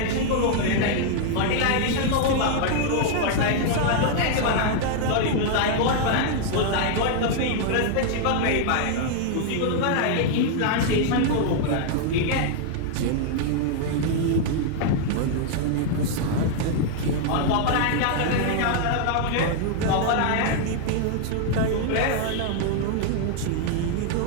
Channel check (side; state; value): both; different; correlation 0.00